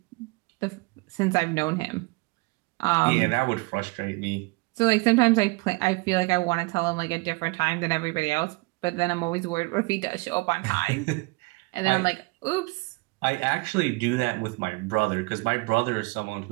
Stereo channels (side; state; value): left; quieter; 26.2 dB